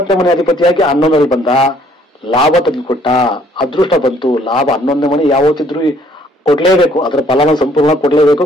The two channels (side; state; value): both; normal; correlation 0.62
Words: ಮನೆ ಅಧಿಪತಿಯಾಗಿ 11ರಲ್ಲಿ ಬಂದ, ಲಾಭ ತಂದುಕೊಟ್ಟ, ಅದೃಷ್ಟ ಬಂತು. ಲಾಭ 11ನೇ ಮನೆ ಯಾವತ್ತಿದ್ರು ಕೊಡ್ಲೇಬೇಕು, ಅದರ ಫಲನ ಸಂಪೂರ್ಣ ಕೊಡ್ಲೇಬೇಕು,